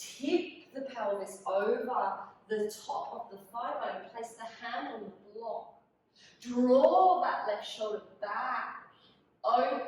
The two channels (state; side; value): identical; both; correlation 1.00